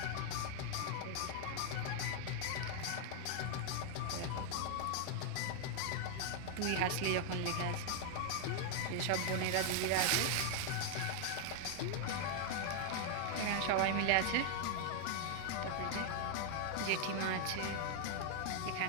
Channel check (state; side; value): different; both; correlation 0.00